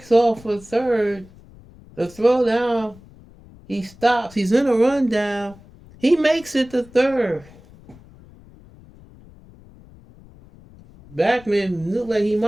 off for third. The throw down, he stops. He's in a rundown. He makes it to third. Backman looked like he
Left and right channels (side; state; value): left; noise; rumble, 23 dB below the sound